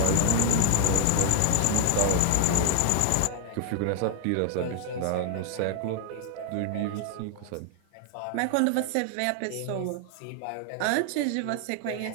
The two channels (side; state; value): both; different; correlation 0.00